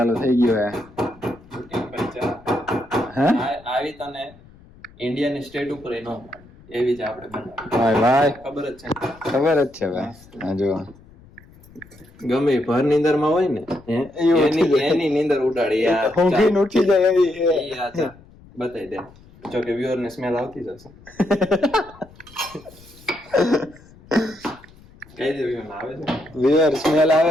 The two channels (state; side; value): noise; left; rumble, 24 dB below the sound